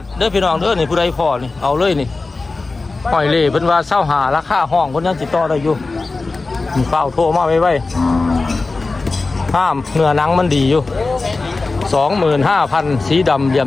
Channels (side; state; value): right; quieter; 3.7 dB